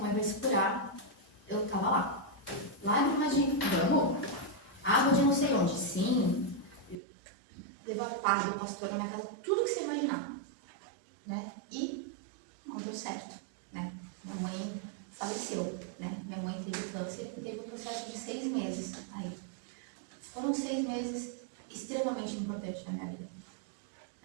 vai se curar, eu estava lá. Lágrimas de vamos, água de não sei onde, sim, levar padre, pastor na minha casa, tudo que você imaginar. Né? E não deu certo. Né? Minha mãe faleceu. Né? Minha mãe teve câncer e teve um processo de 6 meses. Aí. Foram 6 meses extremamente importantes na minha vida.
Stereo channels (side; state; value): left; drops out; at 7.0 s